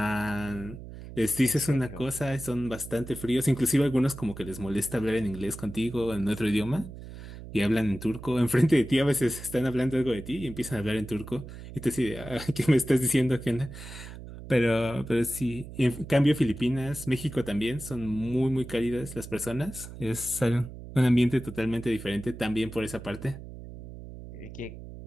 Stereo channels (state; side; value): noise; right; hum, 13 dB below the sound